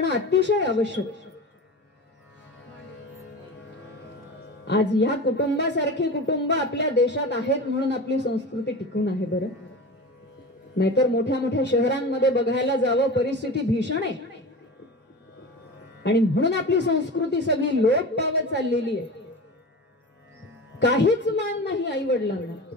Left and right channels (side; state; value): both; normal; correlation 0.31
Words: अतिशय आवश्यक. आज या कुटुंबासारखे कुटुंब आपल्या देशात आहेत म्हणून आपली संस्कृती टिकून आहे. बरं, नाहीतर मोठ्या मोठ्या शहरांमध्ये बघायला जावं, परिस्थिती भीषण आहे. आणि म्हणून आपली संस्कृती सगळी लोप पावत चाललेली आहे. काहीच मान नाही आई वडिलांना.